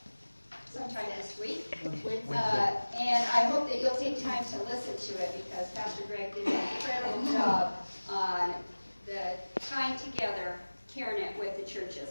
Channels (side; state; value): both; inverted; correlation -1.00